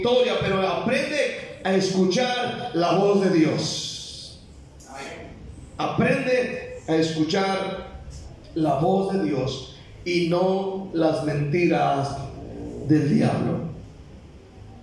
Pero aprende a escuchar la voz de Dios. Aprende a escuchar la voz de Dios y no las mentiras del diablo.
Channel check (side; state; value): both; identical; correlation 1.00